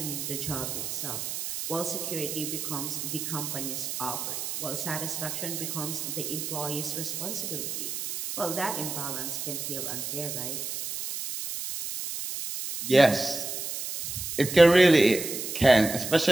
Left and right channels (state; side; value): noise; right; hiss, 5 dB below the sound